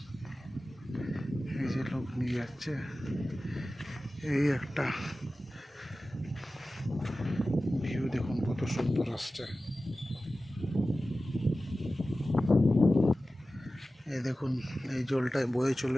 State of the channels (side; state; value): both; normal; correlation 0.95